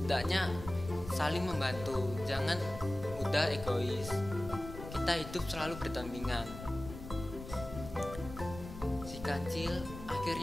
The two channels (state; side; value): noise; left; rumble, 11 dB below the sound